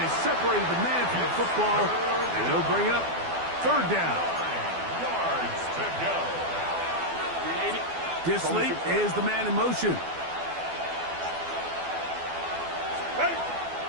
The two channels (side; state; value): left; late; 12 ms